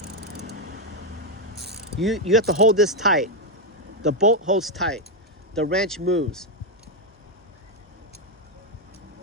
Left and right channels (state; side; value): normal; both; correlation 0.03